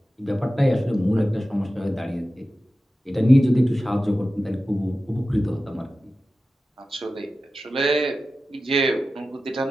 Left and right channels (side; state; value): both; normal; correlation 0.94